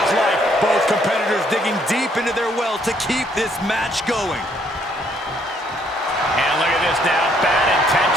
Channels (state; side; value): normal; both; correlation 0.68